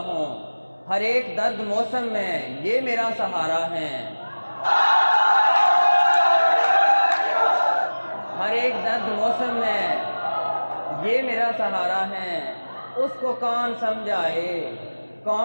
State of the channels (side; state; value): both; inverted; correlation -1.00